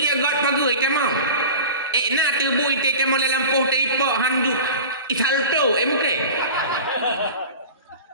pegu kamang. Na tebui te kamu dalam poh teipak handuk isalto mungkin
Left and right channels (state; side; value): inverted; both; correlation -0.36